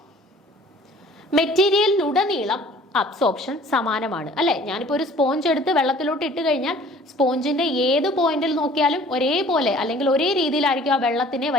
മെറ്റീരിയലിലുടനീളം അബ്സോർപ്ഷൻ സമാനമാണ് അല്ലെ. ഞാനിപ്പോ ഒരു സ്പോഞ്ച് എടുത്ത് വെള്ളത്തിലോട്ട് ഇട്ട് കഴിഞ്ഞാൽ സ്പോഞ്ചിന്റെ ഏത് പോയിന്റിൽ നോക്കിയാലും ഒരേപോലെ അല്ലെങ്കിൽ ഒരേ രീതിയിലായിരിക്കും ആ വെള്ളത്തിനെ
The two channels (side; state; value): both; normal; correlation 0.51